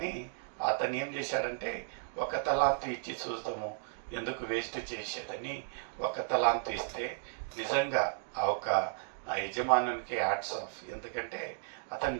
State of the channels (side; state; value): left; silent; digital silence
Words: అతను ఏం చేశాడంటే ఒక తలాంతు ఇచ్చి చూద్దాము, ఎందుకు వేస్ట్ చేసేదని ఒక తలాంతు ఇస్తే నిజంగా ఆ యజమానునికి హ్యాట్స్ ఆఫ్. ఎందుకంటే అతను